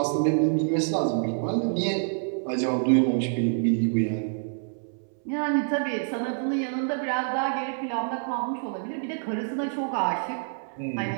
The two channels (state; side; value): silent; left; 60 dB below the other